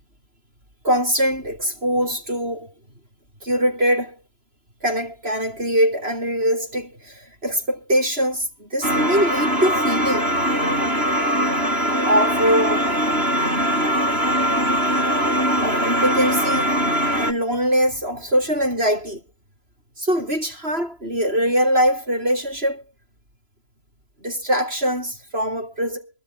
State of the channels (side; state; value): left; late; 3.0 ms